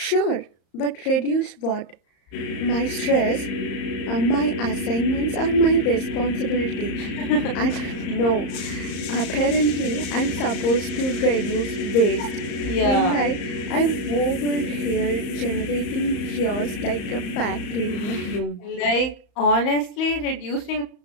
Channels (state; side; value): late; right; 34 ms